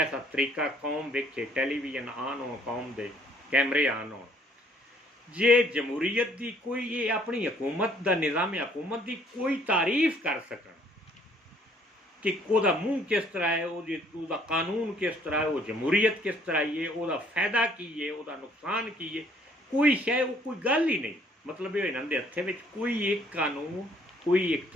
तरीका कौम वेखे, टेलीविजन आन हो, कौम दे कैमरे आन हो, जे जमहूरीयत की कोई ये अपनी हुकूमत का निज़ाम हुकूमत की कोई तारीफ कर सकन कि वह मूँह किस तरह है, वह कानून किस तरह है, वो जमहूरीयत किस तरह है, वह फ़ायदा की है, वह नुकसान की है, कोई शय वो कोई गल ही नहीं। मतलब ये इन्होंने हत्थे विच कोई एक कानून, कोई एक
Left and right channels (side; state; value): both; normal; correlation 0.62